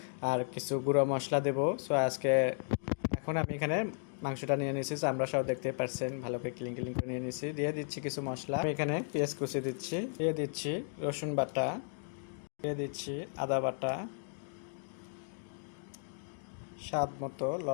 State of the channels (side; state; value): right; silent; digital silence